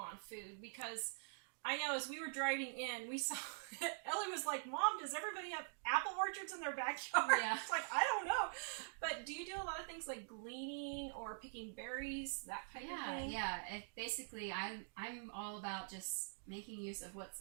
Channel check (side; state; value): left; silent; digital silence